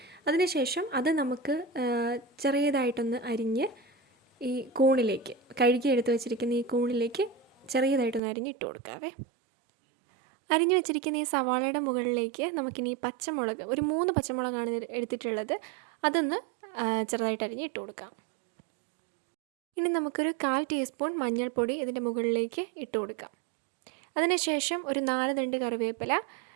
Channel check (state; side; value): drops out; left; at 8.2 s